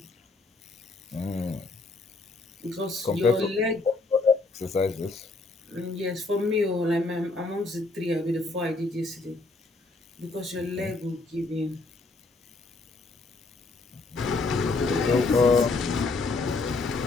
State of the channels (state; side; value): quieter; right; 3.5 dB